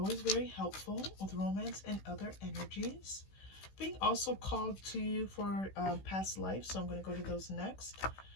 very helpful with romance and other energies. Being also called to you for past life, so I'm going to go to those next.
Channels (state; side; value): late; right; 16 ms